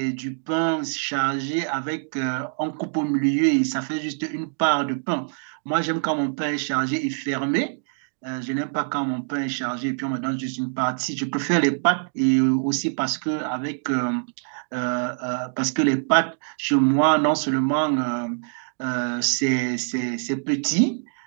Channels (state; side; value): silent; left; digital silence